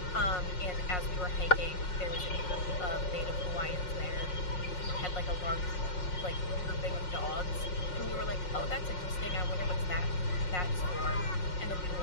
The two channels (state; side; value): late; right; 5.5 ms